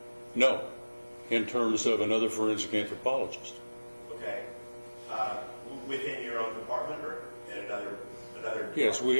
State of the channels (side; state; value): both; inverted; correlation -1.00